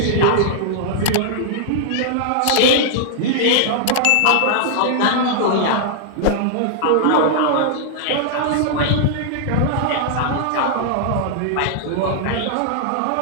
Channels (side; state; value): both; different; correlation -0.01